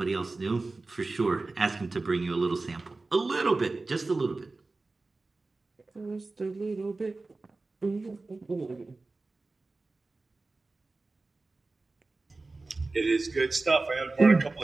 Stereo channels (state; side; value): quieter; left; 3.5 dB